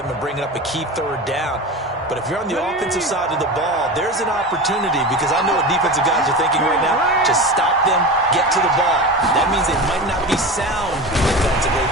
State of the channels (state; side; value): normal; both; correlation 0.27